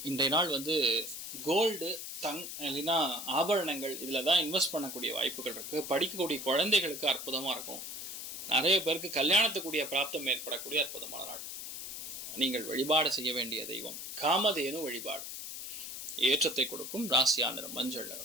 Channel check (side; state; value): left; noise; hiss, 8 dB below the sound